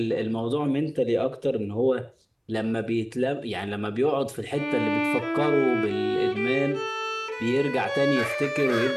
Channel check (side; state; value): both; identical; correlation 1.00